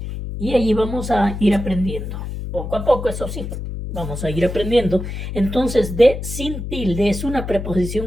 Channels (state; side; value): noise; left; hum, 6 dB below the sound